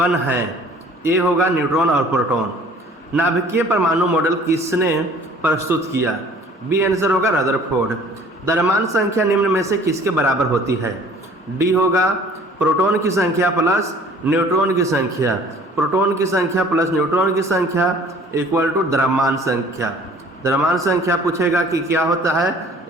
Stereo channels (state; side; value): normal; both; correlation 0.52